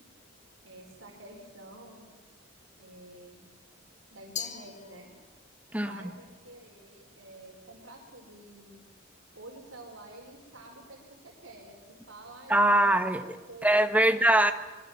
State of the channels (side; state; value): both; normal; correlation 0.70